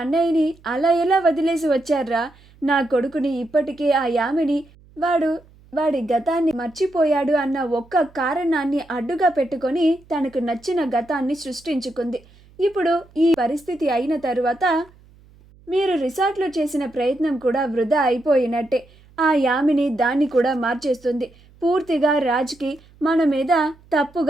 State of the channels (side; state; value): right; noise; hum, 27 dB below the sound